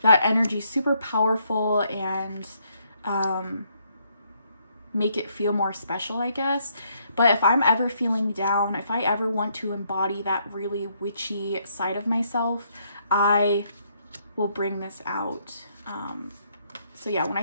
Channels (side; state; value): both; inverted; correlation -0.72